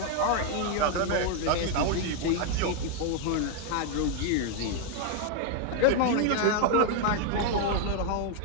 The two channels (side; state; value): both; different; correlation 0.00